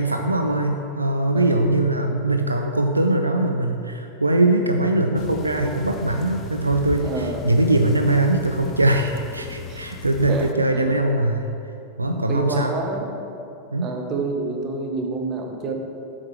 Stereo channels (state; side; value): inverted; both; correlation -0.58